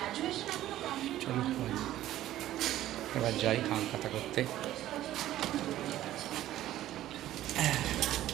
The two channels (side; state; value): left; quieter; 13.7 dB